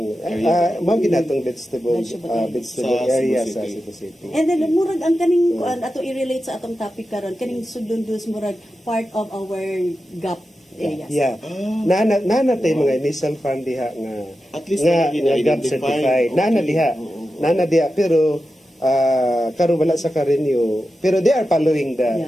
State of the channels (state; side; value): normal; both; correlation 0.91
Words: mao ginatong vegetable area sa Cebu City. And then murag ang kaning kuan ato i-relate sa atong topic karon kaning Sudlon dus murag part of our GAP areas. Yeah. Nana tay mga initial fund diha nga at least nga GAP certified. Nana diha pero karon wala sa ka-renew pero they are following